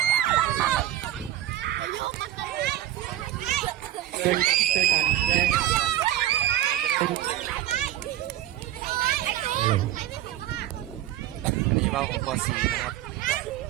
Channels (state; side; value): quieter; left; 13.3 dB